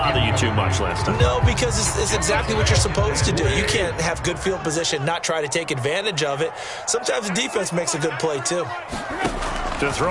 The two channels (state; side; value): identical; both; correlation 1.00